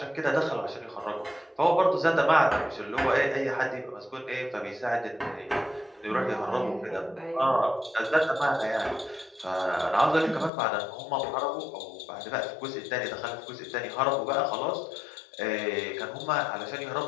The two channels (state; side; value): drops out; right; at 10.5 s